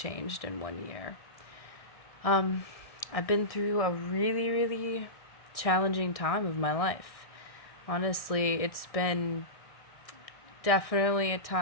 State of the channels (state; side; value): late; right; 1.6 ms